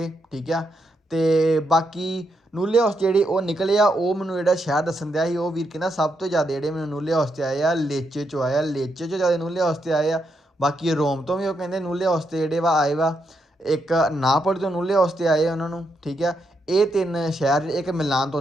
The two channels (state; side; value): normal; both; correlation 0.81